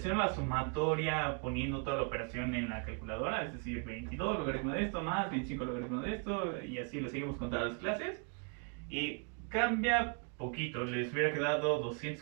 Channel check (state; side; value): quieter; left; 38.2 dB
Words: la sumatoria poniendo toda la operación en la calculadora, es decir, 22 logaritmo de esto más 25 logaritmo de esto, y así lo seguimos con todas las clases. Y cambia poquito, les hubiera quedado